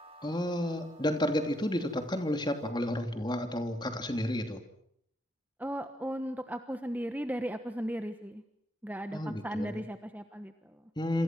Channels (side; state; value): both; normal; correlation 0.77